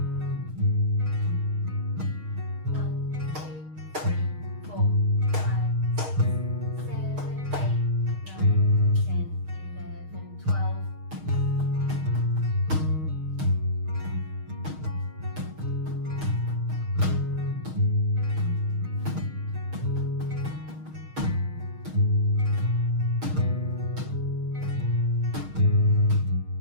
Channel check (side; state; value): left; late; 6.4 ms